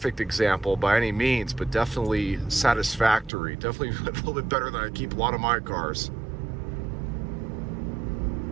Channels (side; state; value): left; drops out; at 3.3 s